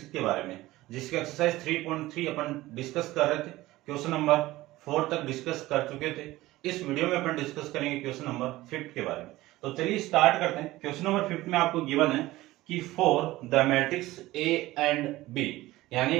के बारे में, जिसके एक्सरसाइज 3.3 अपन डिस्कस कर रहे थे। क्वेश्चन नंबर 4 तक डिस्कस कर चुके थे। इस वीडियो में अपन डिस्कस करेंगे क्वेश्चन नंबर 5 के बारे में। तो चलिए स्टार्ट करते हैं। क्वेश्चन नंबर 5 में आपको गिवन है कि for the matrix A and B,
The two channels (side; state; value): left; quieter; 17.6 dB